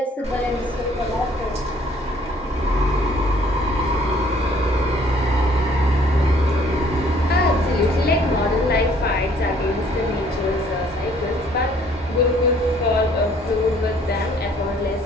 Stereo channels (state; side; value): normal; both; correlation 0.60